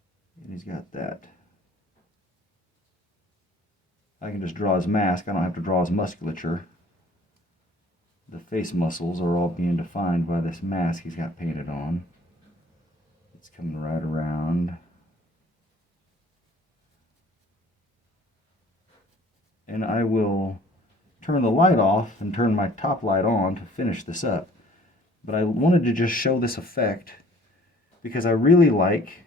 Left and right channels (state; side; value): normal; both; correlation 0.54